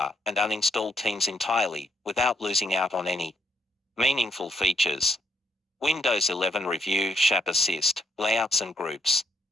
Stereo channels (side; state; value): both; normal; correlation 0.73